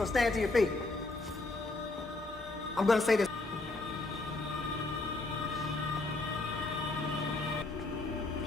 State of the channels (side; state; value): right; quieter; 3.2 dB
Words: stand to your feet. I'm gonna say this.